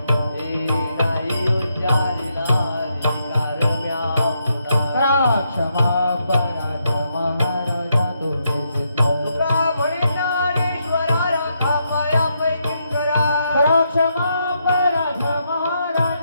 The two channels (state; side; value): inverted; both; correlation -0.80